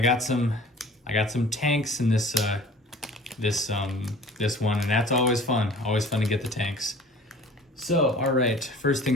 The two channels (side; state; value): both; normal; correlation 0.46